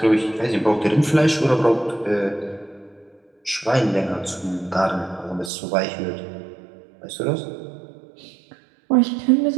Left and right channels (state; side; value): drops out; left; at 5.5 s